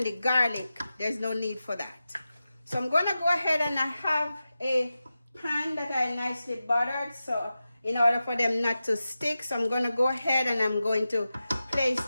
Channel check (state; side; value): inverted; both; correlation -0.93